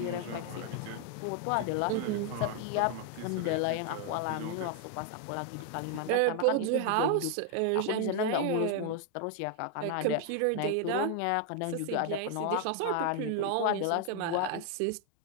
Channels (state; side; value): different; both; correlation 0.00